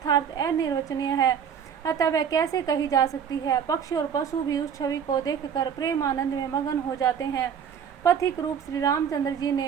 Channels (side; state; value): left; quieter; 7.7 dB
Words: अनिर्वचनीय है, अतः वह कैसे कही जा सकती है। पक्षी और पशु भी उस छवि को देखकर प्रेम आनंद में मगन हो जाते हैं। पथिक रूप श्री रामचंद्र जी